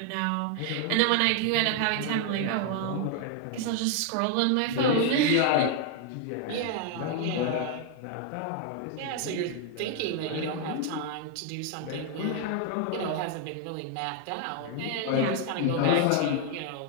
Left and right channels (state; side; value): different; both; correlation 0.00